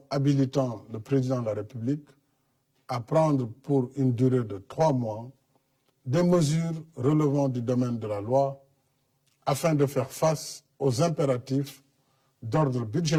habilitant le président de la République à prendre pour une durée de 3 mois des mesures relevant du domaine de la loi afin de faire face aux impératifs d'ordre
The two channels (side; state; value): both; identical; correlation 1.00